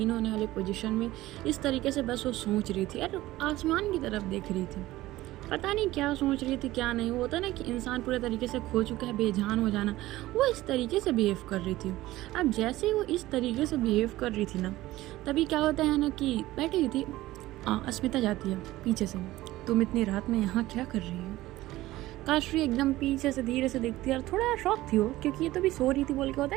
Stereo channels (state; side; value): quieter; left; 16.9 dB